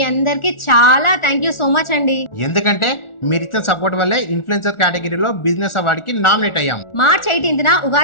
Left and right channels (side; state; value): right; late; 1.4 ms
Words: అందరికి చాలా థ్యాంక్ యూ సో మచ్ అండి. ఎందుకంటే మీరు ఇచ్చిన సపోర్ట్ వల్లే ఇన్ఫ్లుయెన్సర్ కేటగిరీలో బిజినెస్ అవార్డ్ కి నామినేట్ అయ్యాం. మార్చ్ 18న